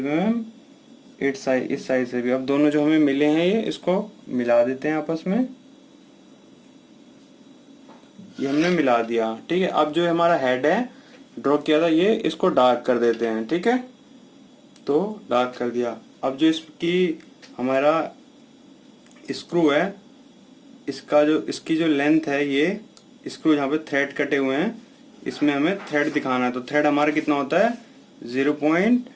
mm इस साइड से भी। अब दोनों जो हमें मिले हैं ये इसको मिला देते हैं आपस में, ये हमने मिला दिया, ठीक है। अब जो हमारा हेड है ड्रॉ किया था ये, इसको डार्क कर देते हैं, ठीक है। तो डार्क कर दिया। अब जो इसकी हमारा स्क्रू है, इसकी जो लेंथ है, ये स्क्रू जहाँ पे थ्रेड कटे हुए हैं इसमें हमें थ्रेड दिखाना है। तो थ्रेड हमारा कितना होता है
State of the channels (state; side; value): identical; both; correlation 1.00